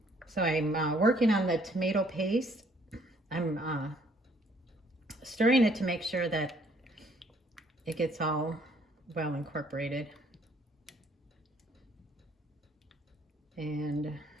So I'm working on the tomato paste. I'm stirring it to make sure that it gets all well incorporated. And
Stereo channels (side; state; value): both; normal; correlation 0.63